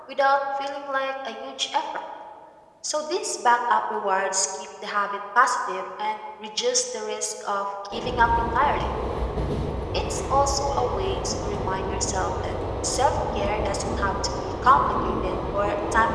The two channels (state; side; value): identical; both; correlation 1.00